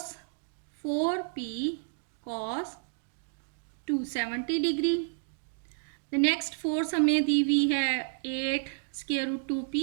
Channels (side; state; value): left; silent; digital silence